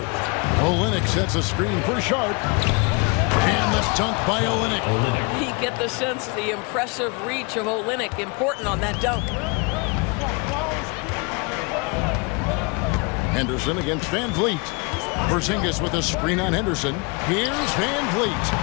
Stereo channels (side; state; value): right; quieter; 30.3 dB